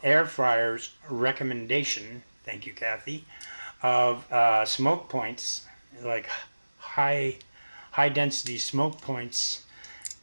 Air Fryers recommendation, thank you, Kathy, of smoke points, like high density smoke points.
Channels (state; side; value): inverted; both; correlation -1.00